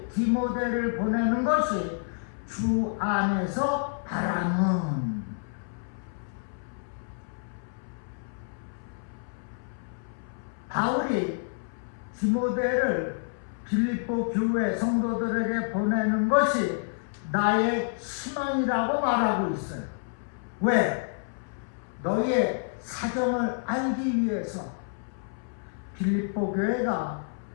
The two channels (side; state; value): right; silent; 59 dB below the other